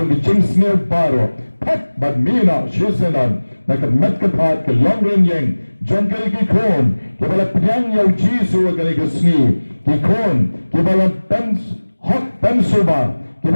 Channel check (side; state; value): both; inverted; correlation -1.00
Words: ka jing snil baro pat badmina shisenan Nakamat kapat ka longren yang John kali ki kon kibala piang yaw Jisu kali ka sni ki kon kibala pens hot pensuba